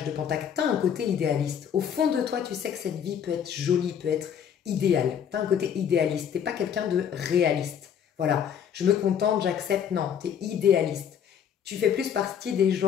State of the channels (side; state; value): right; quieter; 8.4 dB